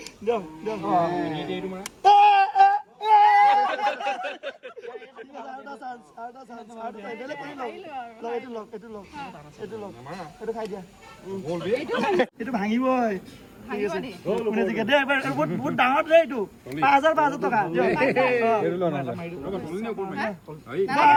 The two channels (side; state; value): both; identical; correlation 1.00